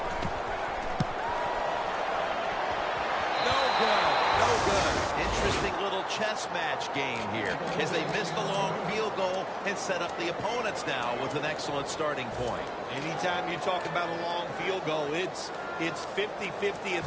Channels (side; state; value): both; identical; correlation 1.00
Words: No good. No good. Interesting little chess match game here as they miss the long field goal and set up the opponents now with an excellent starting point. Anytime you talk about a long field goal, it's 50-50